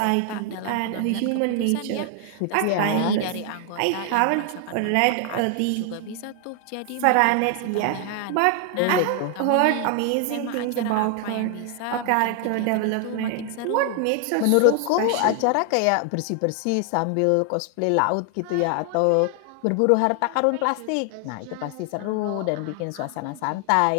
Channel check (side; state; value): both; different; correlation 0.00